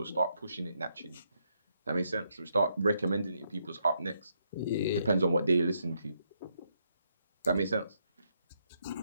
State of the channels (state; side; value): inverted; both; correlation -0.78